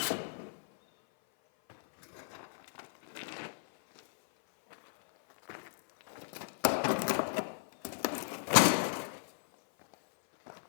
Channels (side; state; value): right; silent; 55 dB below the other